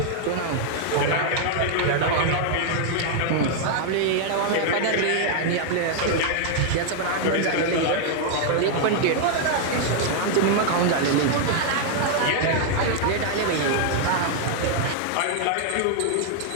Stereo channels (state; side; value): different; both; correlation 0.00